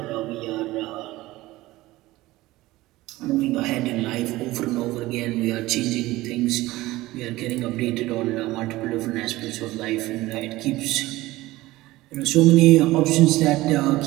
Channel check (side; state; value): left; quieter; 18.3 dB